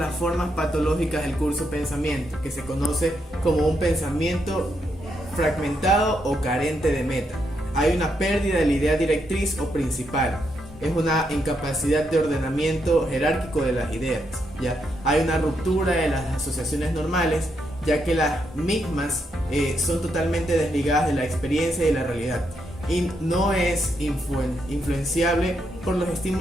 formas patológicas del curso pensamiento, que se conoce como un pensamiento fragmentado o carente de meta. Hay una pérdida de la idea directriz o principal. Es una incapacidad de ordenamiento jerárquico de las ideas. ¿Ya? Hay una ruptura de las asociaciones normales, ya que las mismas son totalmente desligadas de la experiencia y de la realidad, y no es influenciable por los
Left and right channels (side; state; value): both; normal; correlation 0.80